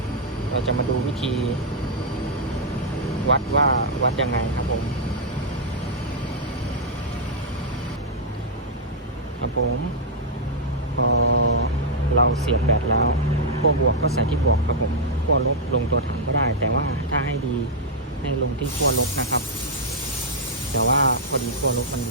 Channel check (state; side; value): normal; both; correlation -0.05